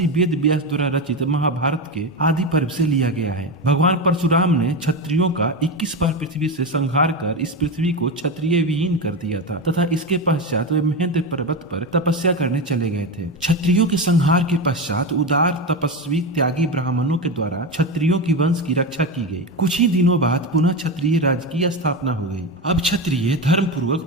वेद व्यास द्वारा रचित महाभारत के आदि पर्व से लिया गया है। भगवान परशुराम ने क्षत्रियों का 21 बार पृथ्वी से संहार कर इस पृथ्वी को क्षत्रिय विहीन कर दिया था तथा इसके पश्चात वे महेंद्र पर्वत पर तपस्या करने चले गए थे। क्षत्रियों के संहार के पश्चात उदार तपस्वी त्यागी ब्राह्मणों के द्वारा क्षत्रियों की वंश की रक्षा की गई। कुछ ही दिनों बाद पुनः क्षत्रिय राज्य की स्थापना हो गई। अब क्षत्रिय धर्म पूर्वक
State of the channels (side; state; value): both; normal; correlation 0.17